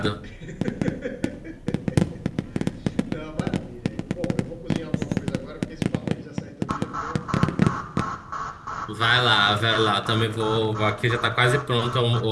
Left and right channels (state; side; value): identical; both; correlation 1.00